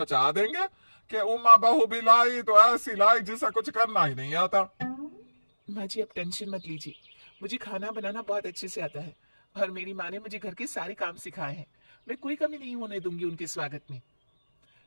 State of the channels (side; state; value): both; inverted; correlation -1.00